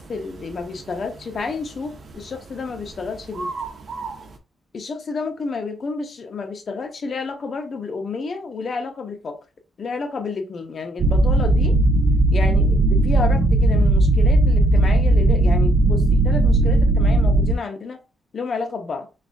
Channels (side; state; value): both; normal; correlation 0.68